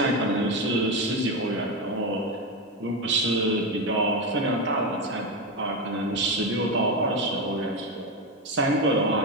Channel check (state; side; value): normal; both; correlation 0.13